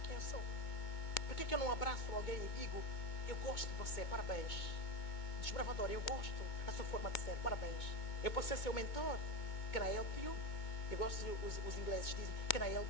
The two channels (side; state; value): right; late; 2.2 ms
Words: Quem eu sou? Por que eu não abraço alguém e digo, eu gosto de você, parabéns. Desbravador, eu gosto da sua forma de ser, parabéns. Eu posso ser seu mentor. Can I help you? Eu gosto, os ingleses dizem, can I help